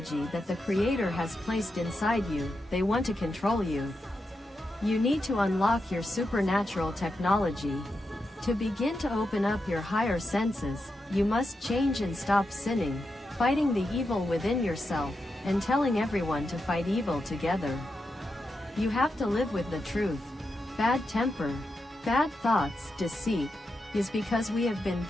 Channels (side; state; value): both; normal; correlation 0.87